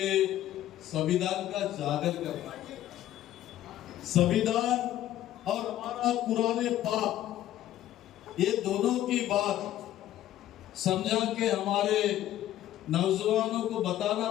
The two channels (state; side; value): quieter; right; 13.0 dB